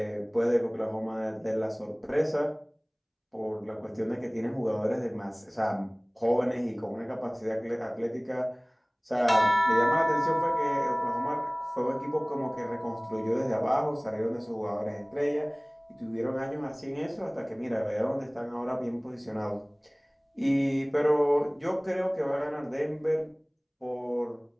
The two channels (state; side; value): identical; both; correlation 1.00